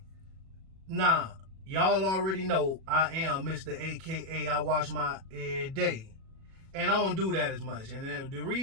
Now, y'all already know I am Mr. AKA I wash my every day. And I don't do that as much. And the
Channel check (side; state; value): left; late; 37 ms